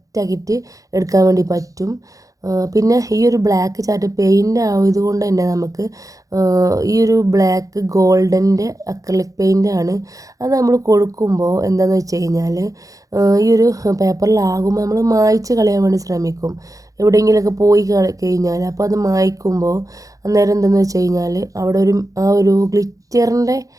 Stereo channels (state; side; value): late; left; 0.17 ms